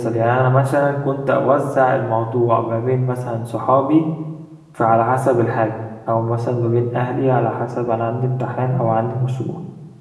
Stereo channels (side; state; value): both; identical; correlation 1.00